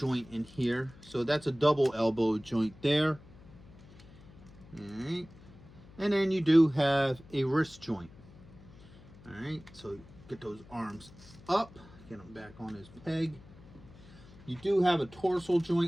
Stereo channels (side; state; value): left; noise; hum, 21 dB below the sound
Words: in here, so that's a double elbow joint there. All right, and then you do have a wrist joint. All right, so get those arms up, get them back on his peg. You do have a torso